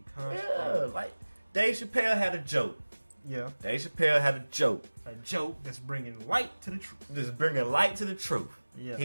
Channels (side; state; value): both; inverted; correlation -1.00